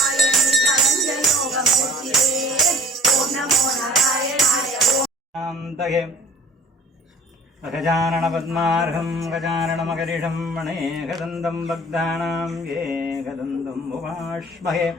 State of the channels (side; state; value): both; normal; correlation 0.48